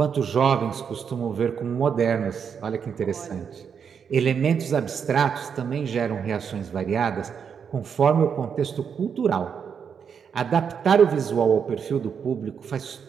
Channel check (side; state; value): left; quieter; 7.0 dB